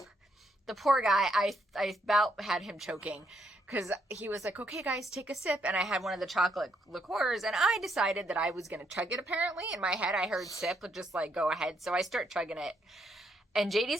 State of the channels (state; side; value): normal; both; correlation 0.75